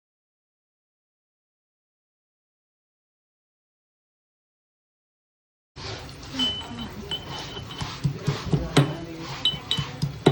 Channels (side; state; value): both; identical; correlation 1.00